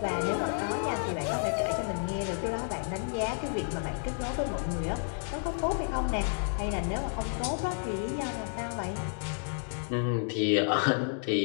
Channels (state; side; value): silent; right; 57 dB below the other